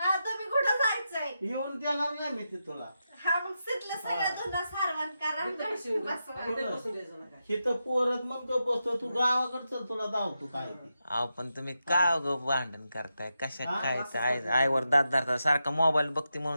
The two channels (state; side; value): inverted; both; correlation -0.87